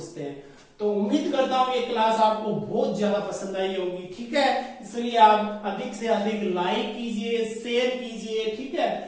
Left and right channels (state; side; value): identical; both; correlation 1.00